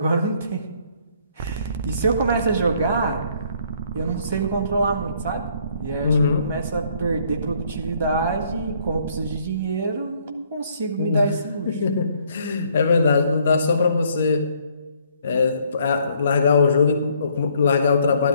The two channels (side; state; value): both; inverted; correlation -0.65